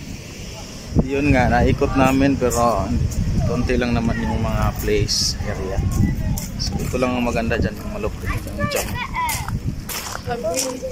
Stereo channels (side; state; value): both; identical; correlation 1.00